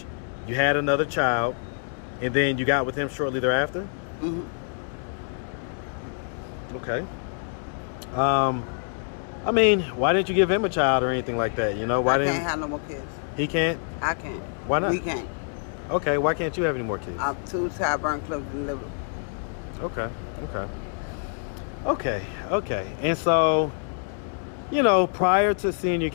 you had another child, and then you got with him shortly thereafter? Mm-hmm. Okay. I mean, why didn't you give him a child or anything like that? You know, why I can't have no more kids. He can't? I can't. Why not? We can't. Okay, why can't you have any more kids? I'm too tired, burn, close to liver. Okay. And so, you know, prior to seeing your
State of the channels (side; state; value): right; silent; 61 dB below the other